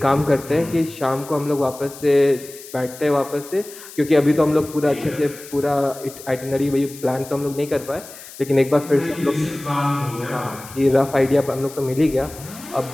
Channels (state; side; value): noise; left; hiss, 17 dB below the sound